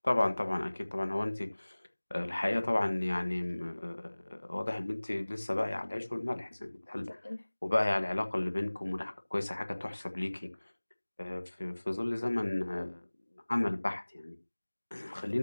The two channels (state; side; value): inverted; both; correlation -1.00